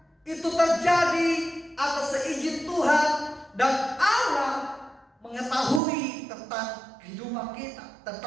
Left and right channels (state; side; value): drops out; left; at 5.8 s